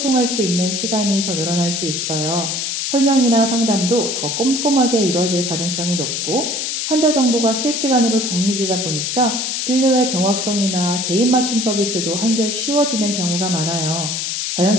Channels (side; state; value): left; noise; hiss, 2 dB below the sound